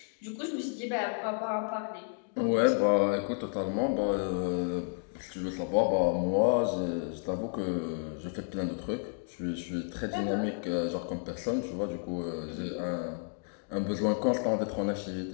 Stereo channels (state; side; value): silent; right; 57 dB below the other